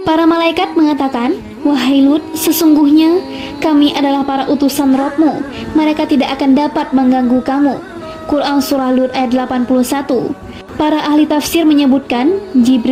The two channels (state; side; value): identical; both; correlation 1.00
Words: Para malaikat mengatakan, wahai Lut, sesungguhnya kami adalah para utusan Rabb-mu, mereka tidak akan dapat mengganggu kamu. Quran Surah Lut ayat 81. Para ahli tafsir menyebutkan,